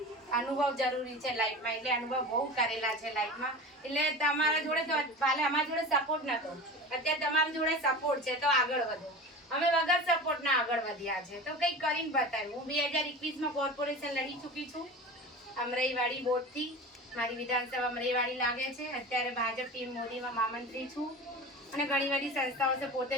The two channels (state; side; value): normal; both; correlation 0.33